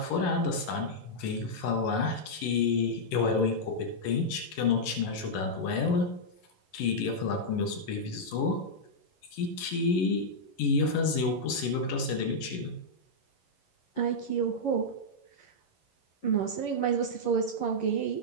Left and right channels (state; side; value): late; right; 11 ms